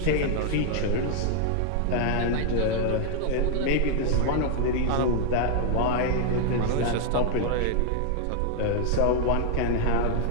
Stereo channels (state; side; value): different; both; correlation 0.00